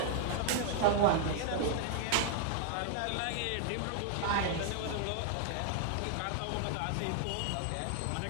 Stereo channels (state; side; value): different; both; correlation -0.01